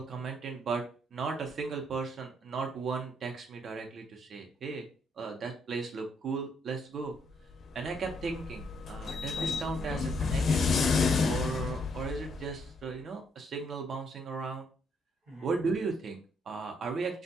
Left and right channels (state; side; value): normal; both; correlation 0.72